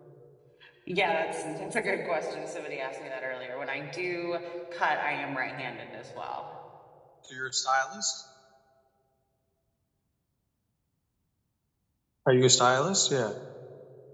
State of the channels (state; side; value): identical; both; correlation 1.00